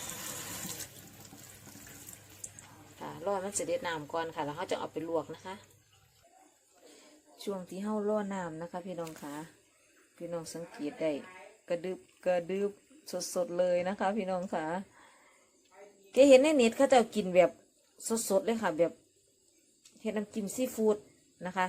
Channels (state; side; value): identical; both; correlation 1.00